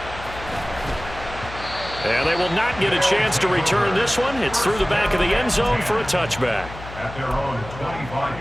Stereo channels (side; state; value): left; noise; hum, 13 dB below the sound